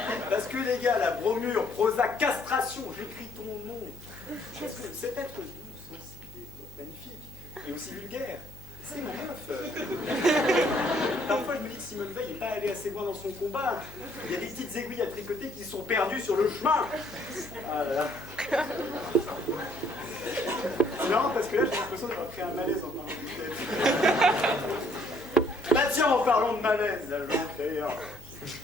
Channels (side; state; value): left; noise; hum, 18 dB below the sound